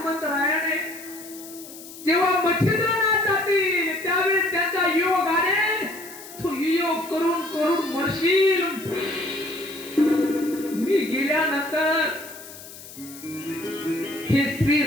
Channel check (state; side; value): noise; left; hiss, 16 dB below the sound